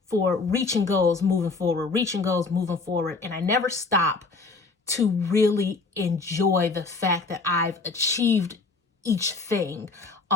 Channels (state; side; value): quieter; right; 4.0 dB